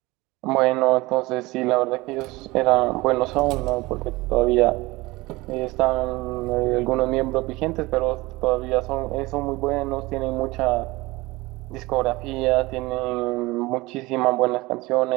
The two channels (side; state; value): left; quieter; 21.5 dB